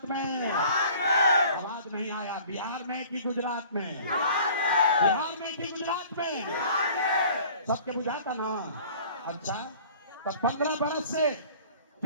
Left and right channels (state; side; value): inverted; both; correlation -0.49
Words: में? आवाज नहीं आया। बिहार में कि गुजरात में? बिहार में कि गुजरात में? सबके बुझाता ना। अच्छा, तो 15 बरस से